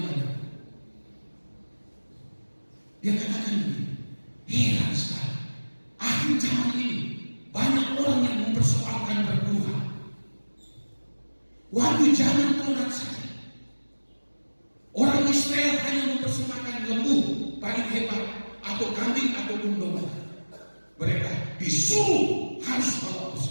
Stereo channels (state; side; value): inverted; both; correlation -1.00